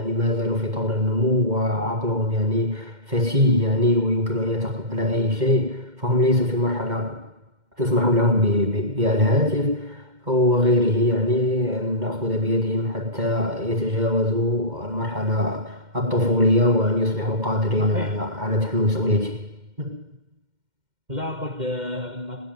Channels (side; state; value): left; late; 2.1 ms